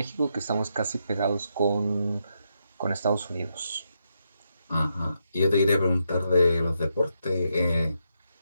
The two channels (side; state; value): both; inverted; correlation -0.81